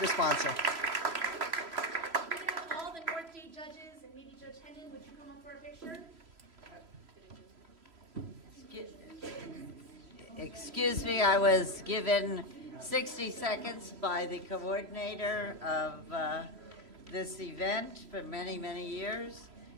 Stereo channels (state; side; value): late; left; 3.0 ms